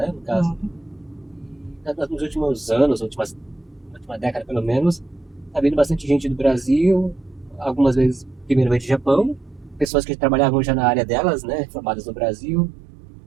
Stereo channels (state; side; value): drops out; left; at 9.9 s